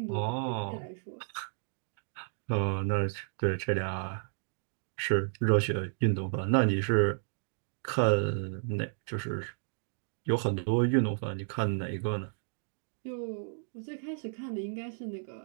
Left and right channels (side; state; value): left; silent; digital silence